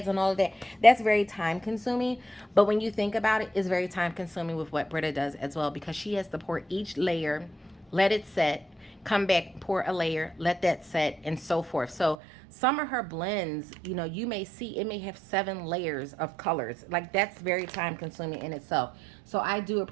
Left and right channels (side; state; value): left; drops out; at 12.2 s